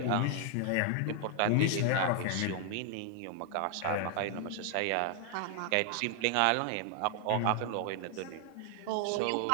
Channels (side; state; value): both; different; correlation 0.00